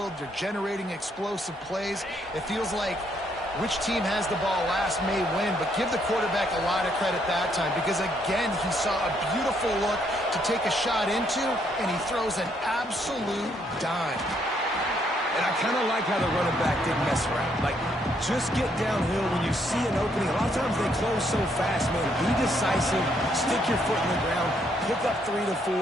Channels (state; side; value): normal; both; correlation 0.72